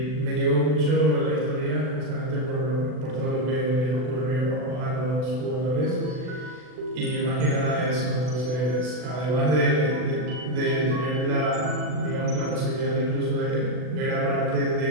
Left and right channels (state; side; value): late; left; 40 ms